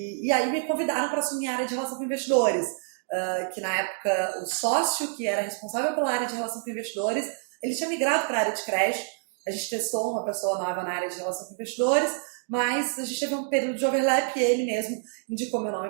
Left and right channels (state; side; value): silent; left; digital silence